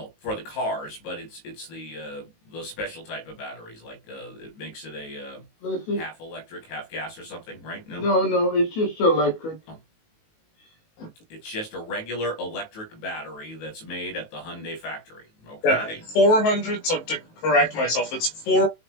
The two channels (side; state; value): right; late; 19 ms